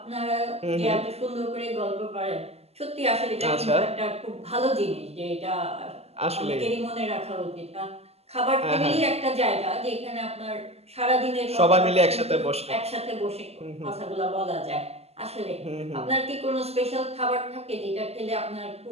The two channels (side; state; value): left; late; 0.30 ms